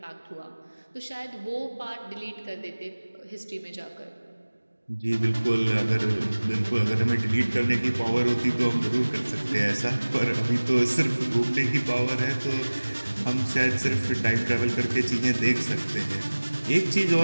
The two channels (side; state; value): both; inverted; correlation -1.00